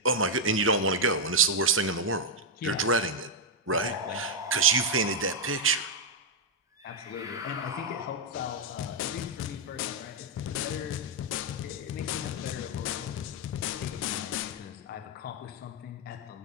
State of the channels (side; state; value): both; normal; correlation -0.02